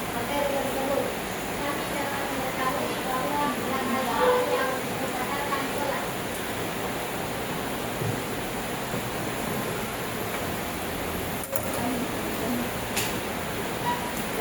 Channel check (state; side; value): identical; both; correlation 1.00